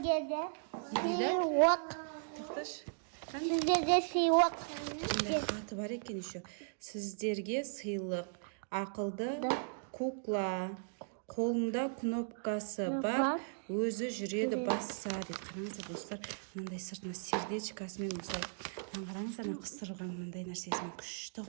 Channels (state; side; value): silent; left; digital silence